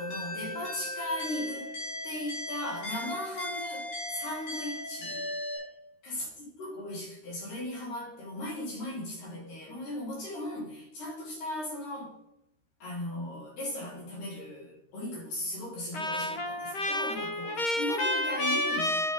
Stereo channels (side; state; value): right; late; 13 ms